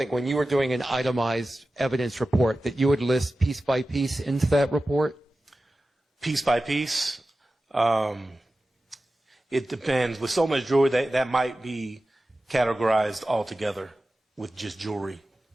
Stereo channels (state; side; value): normal; both; correlation 0.95